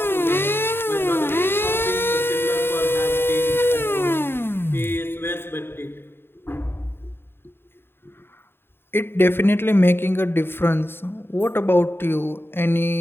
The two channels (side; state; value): right; late; 0.11 ms